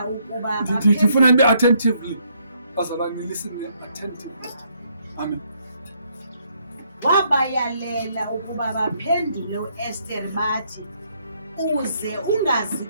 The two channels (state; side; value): inverted; both; correlation -0.71